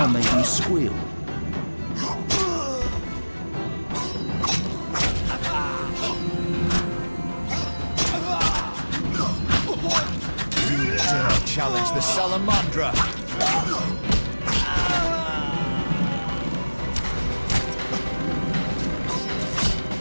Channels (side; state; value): both; inverted; correlation -1.00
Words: make you squeal. You dare challenge the Salamandra.